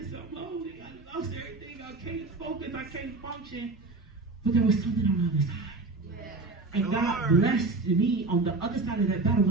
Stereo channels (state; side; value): quieter; left; 3.5 dB